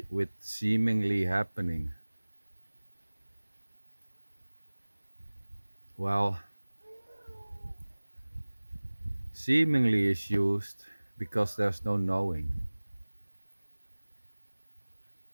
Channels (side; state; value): both; inverted; correlation -1.00